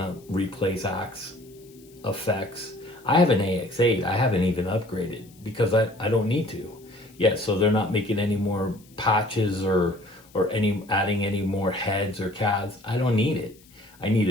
replace Axe effects. I have an AX8, I haven't even upgraded because I don't need to. Yeah, so they're not making any more patches or adding any more heads or cads. I don't need it. I need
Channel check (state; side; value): noise; left; hiss, 27 dB below the sound